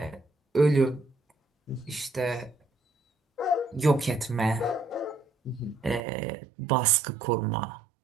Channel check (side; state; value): left; drops out; at 6.0 s